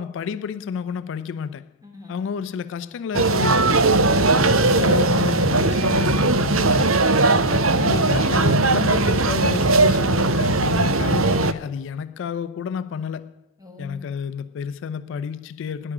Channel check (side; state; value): both; normal; correlation -0.08